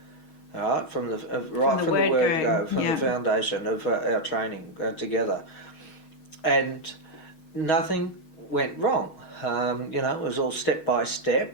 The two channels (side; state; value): right; late; 6.3 ms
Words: All right, from the word go, from the foundation of our training together, and nothing went wrong. It was all step by step,